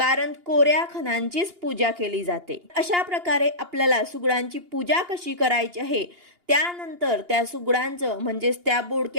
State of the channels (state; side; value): late; left; 2.8 ms